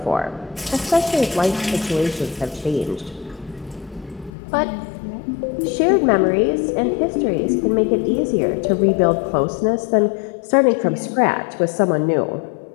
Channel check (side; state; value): right; drops out; at 4.3 s